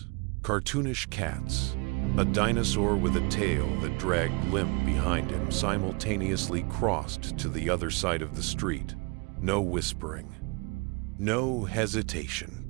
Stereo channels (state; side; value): quieter; left; 28.6 dB